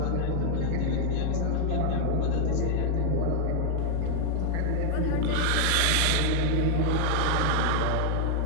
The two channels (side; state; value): both; different; correlation 0.00